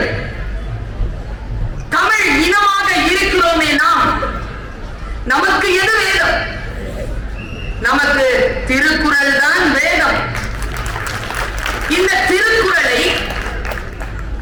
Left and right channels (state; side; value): identical; both; correlation 1.00